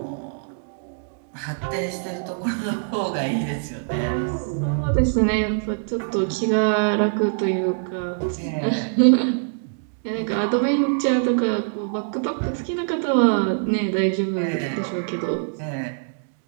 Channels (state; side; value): silent; left; digital silence